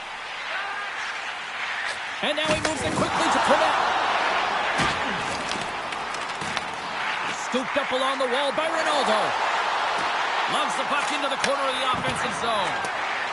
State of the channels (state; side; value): identical; both; correlation 1.00